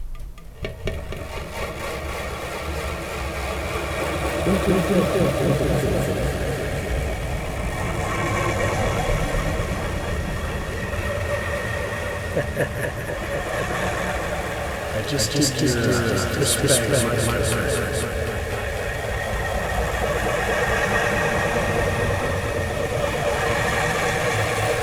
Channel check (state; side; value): identical; both; correlation 1.00